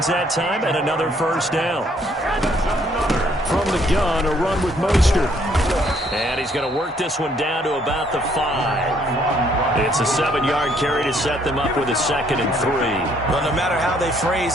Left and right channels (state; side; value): normal; both; correlation 0.66